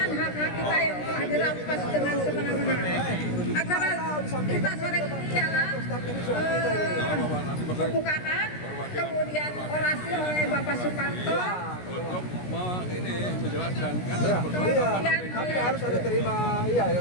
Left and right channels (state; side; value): late; right; 17 ms